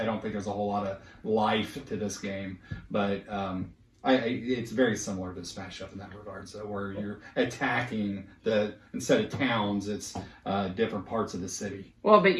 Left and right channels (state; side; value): identical; both; correlation 1.00